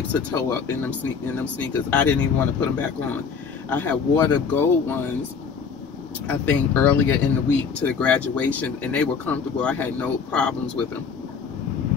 of toe up in them sneakers. I didn't even want to put them back on. I had wore the gold ones, I think, earlier in the week to the graduation, and they were comfortable. I had no problems with them.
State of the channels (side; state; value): right; quieter; 5.9 dB